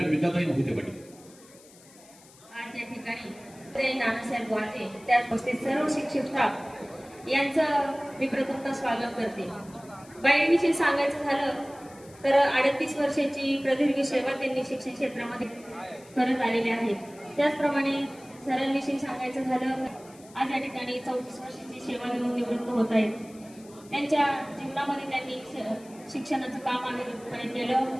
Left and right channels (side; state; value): left; noise; hiss, 24 dB below the sound